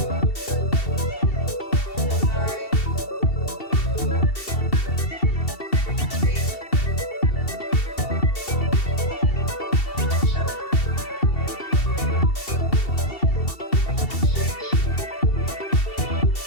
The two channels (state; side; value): late; right; 2.7 ms